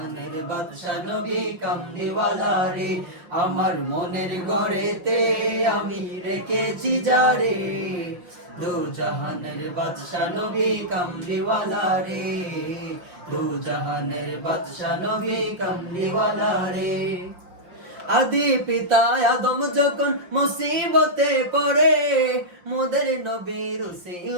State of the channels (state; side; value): late; left; 5.7 ms